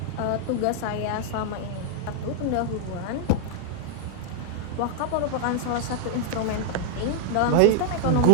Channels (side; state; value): both; different; correlation -0.01